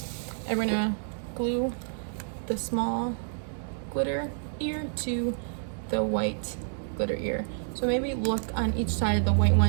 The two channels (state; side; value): silent; left; digital silence